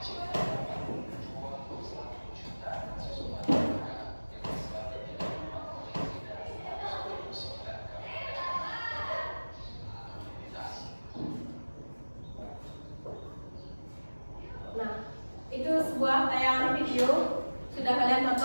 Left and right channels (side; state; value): both; inverted; correlation -1.00